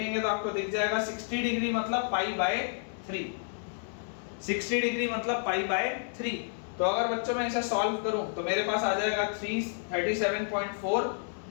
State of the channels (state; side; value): silent; right; digital silence